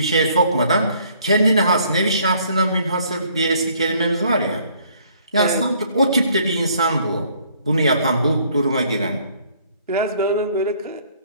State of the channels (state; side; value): inverted; both; correlation -0.62